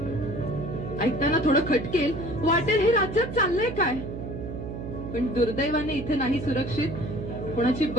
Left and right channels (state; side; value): noise; right; hum, 7 dB below the sound